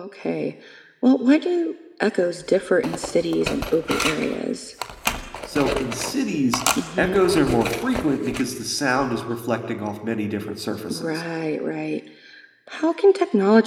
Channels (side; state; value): both; identical; correlation 1.00